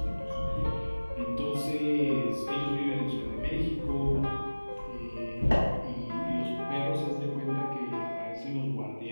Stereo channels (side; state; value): both; inverted; correlation -1.00